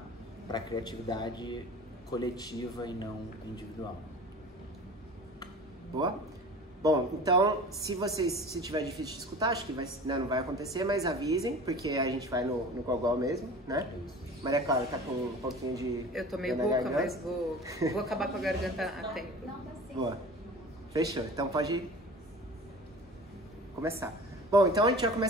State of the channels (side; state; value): both; normal; correlation 0.39